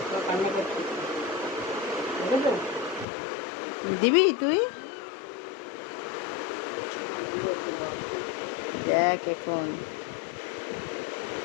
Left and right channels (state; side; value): drops out; right; at 3.1 s